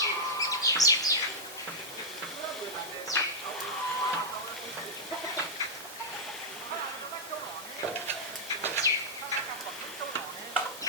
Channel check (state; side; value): normal; both; correlation -0.08